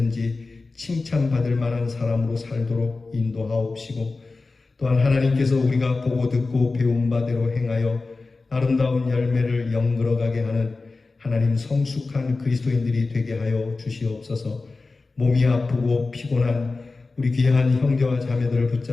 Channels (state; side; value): quieter; right; 3.7 dB